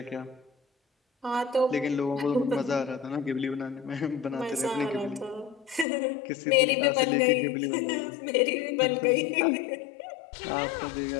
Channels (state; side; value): drops out; right; at 5.9 s